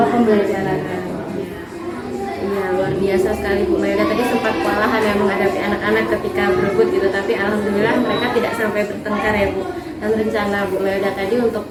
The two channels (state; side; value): identical; both; correlation 1.00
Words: pembelajaran. Iya, luar biasa sekali Bu Melda. Tadi sempat kewalahan ya menghadapi anak-anak ketika berebut gitu, tapi alhamdulillah mereka tidak sampai bertengkar ya Bu. Dan rencana Bu Melda tadi untuk